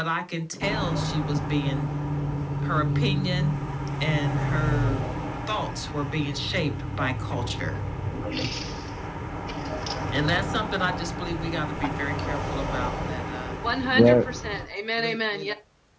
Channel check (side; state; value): both; identical; correlation 1.00